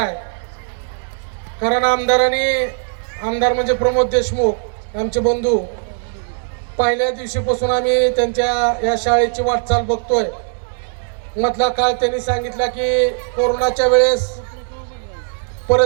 आहे. कारण आमदार म्हणजे प्रमोद देशमुख आमचे बंधू, पहिल्या दिवशीपासून आम्ही त्यांच्या या शाळेची वाटचाल बघतोय. मधला काळ त्यांनी सांगितला की कोरोनाच्या वेळेस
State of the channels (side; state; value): left; silent; digital silence